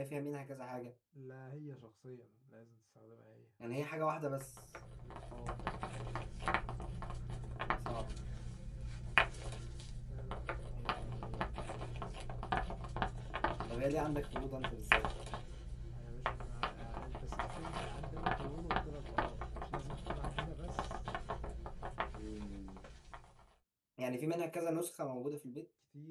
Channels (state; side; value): identical; both; correlation 1.00